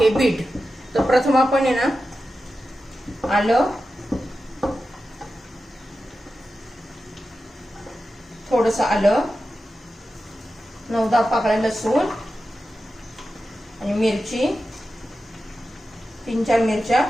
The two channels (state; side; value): normal; both; correlation 0.92